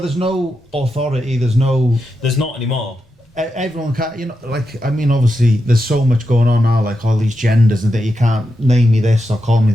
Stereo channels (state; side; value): normal; both; correlation 0.87